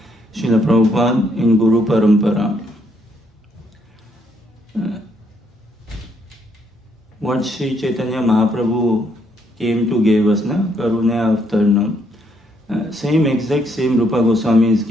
Srila Prabhupada in Guru Parampara. What Sri Chaitanya Mahaprabhu came to give us, na? Karuna Avtarnam. Same Rupa Goswami is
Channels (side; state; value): both; normal; correlation 0.72